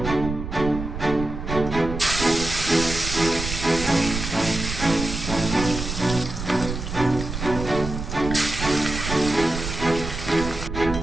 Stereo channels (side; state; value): right; noise; rumble, 6 dB below the sound